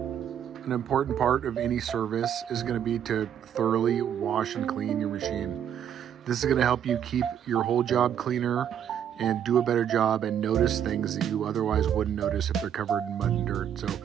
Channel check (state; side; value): quieter; left; 9.3 dB